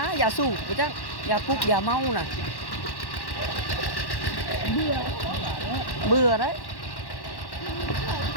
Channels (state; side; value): late; right; 1.1 ms